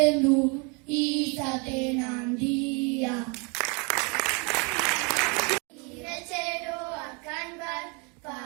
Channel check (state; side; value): quieter; left; 32.5 dB